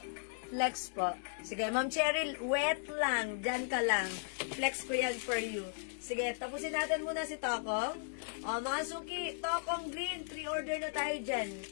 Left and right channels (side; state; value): right; silent; digital silence